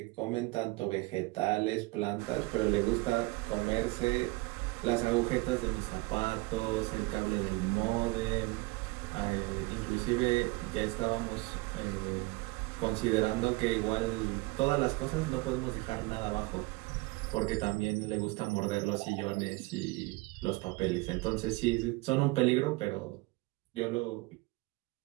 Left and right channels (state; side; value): quieter; left; 23.2 dB